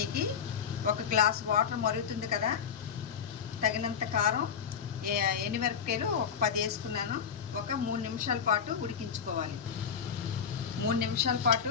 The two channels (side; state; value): right; quieter; 7.2 dB